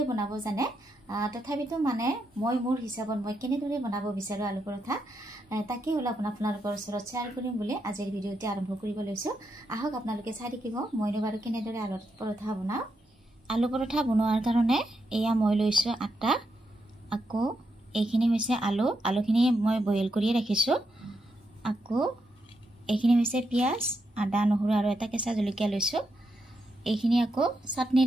বনাব জানে তথাপিতো মানে মই মোৰ হিচাপত মই কেনেদৰে বনাব বিচাৰো আলু পৰঠা তাকে হল আপোনালোকৰ ওচৰত শ্বেয়াৰ কৰিম বুলি আজিৰ ভিডিওটি আৰম্ভ কৰিব লৈছো আহক আপোনালোকে চাই দেখিব মইনো বাৰু কেনেদৰে আলু পৰঠা বনাও आलू परोठा बनवार कारणे एया মই লৈছো আটা আকো এইখিনি হৈছে আলুখিনি মই বইল কৰি ৰাখিছো আকো এইখিনি হৈছে পিয়াজ আদা নহৰু আৰু এটা কেঁচা জলকীয়া লৈছো এইখিনি আকো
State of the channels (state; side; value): normal; both; correlation 0.82